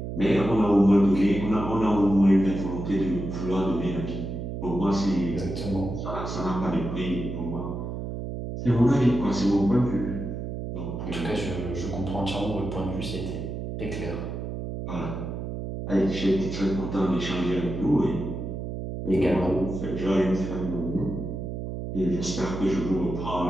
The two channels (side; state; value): right; noise; hum, 6 dB below the sound